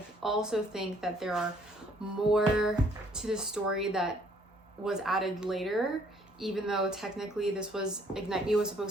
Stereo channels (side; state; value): both; normal; correlation 0.63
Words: also think that there are more to the story that was added later, even though technically this was Ignite Me was